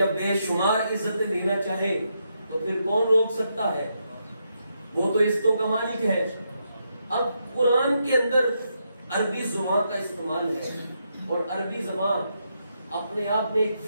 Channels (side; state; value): both; inverted; correlation -0.81